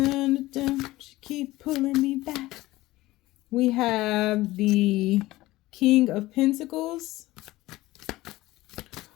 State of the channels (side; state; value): right; quieter; 18.0 dB